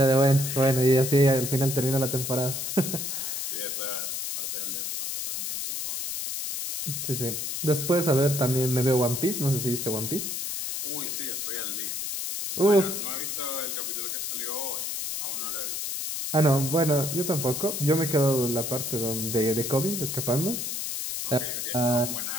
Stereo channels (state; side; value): noise; left; hiss, 3 dB below the sound